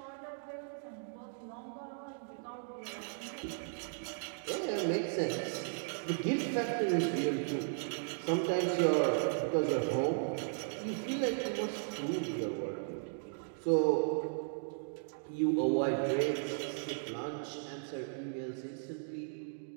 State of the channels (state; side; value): silent; left; digital silence